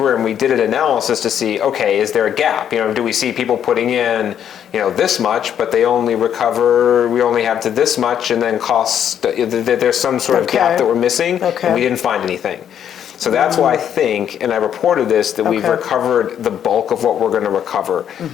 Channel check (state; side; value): quieter; right; 9.3 dB